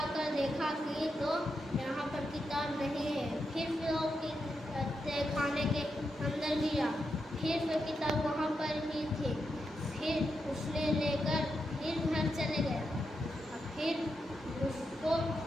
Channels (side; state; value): both; normal; correlation 0.85